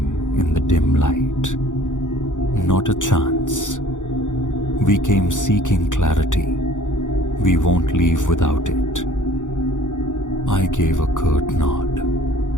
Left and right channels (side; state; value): right; late; 0.86 ms